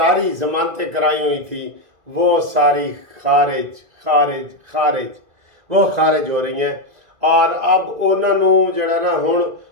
ضمانتیں کرائی ہوئی تھی، وہ ساری خارج وہ خارج ہو رہی ہیں. اور اب انہوں نے جڑا نا ہن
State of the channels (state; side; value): late; left; 2.0 ms